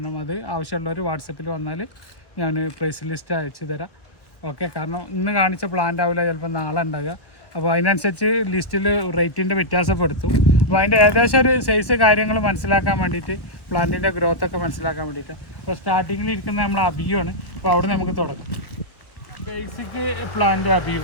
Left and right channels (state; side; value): late; right; 1.3 ms